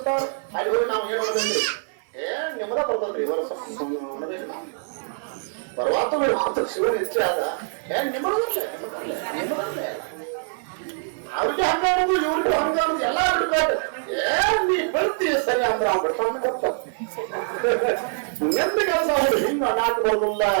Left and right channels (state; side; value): silent; left; 56 dB below the other